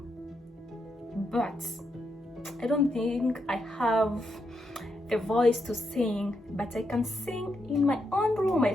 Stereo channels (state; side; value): normal; both; correlation 0.81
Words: but I don't think I have the voice to sing, but I can sing in my own room. I